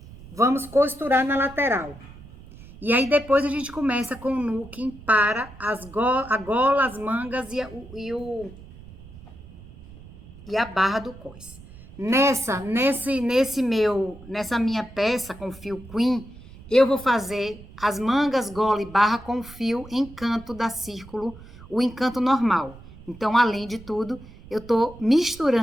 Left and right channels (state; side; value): noise; right; rumble, 18 dB below the sound